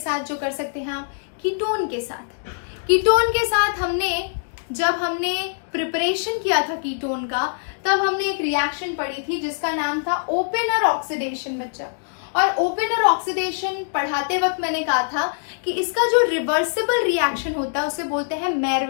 जो कर सकते हैं आप। कीटोन के साथ, कीटोन के साथ जब हमने प्रिपरेशन किया था कीटोन का, तब हमने एक रिएक्शन पढ़ी थी जिसका नाम था ओपेनर ऑक्सीडेशन बच्चा। और ओपेनर ऑक्सीडेशन पढ़ाते वक्त मैंने कहा था कि इसका जो रिवर्सिबल रिएक्शन होता है उसे बोलते हैं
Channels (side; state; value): right; silent; digital silence